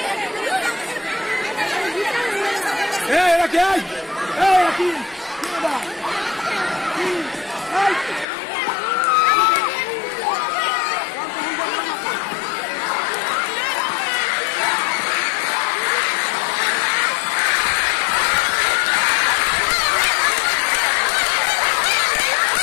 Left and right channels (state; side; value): drops out; right; at 8.2 s